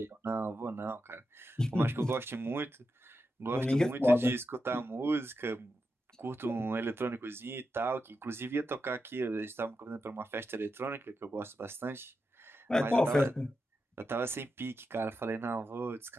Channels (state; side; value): normal; both; correlation 0.88